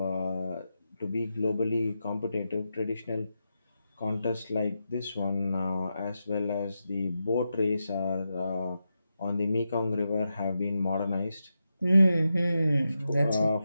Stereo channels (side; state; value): both; inverted; correlation -0.88